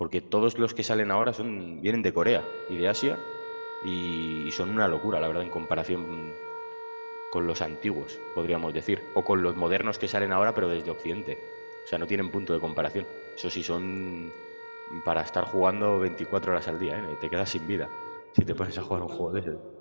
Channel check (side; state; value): both; inverted; correlation -1.00